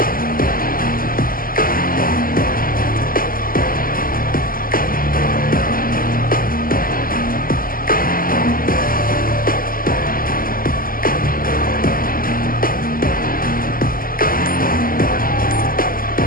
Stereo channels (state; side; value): late; right; 0.42 ms